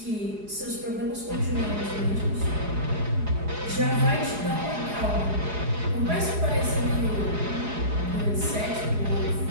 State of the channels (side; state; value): left; late; 4.8 ms